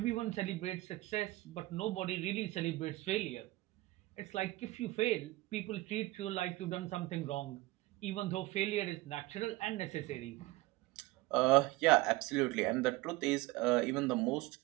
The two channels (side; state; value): left; quieter; 19.2 dB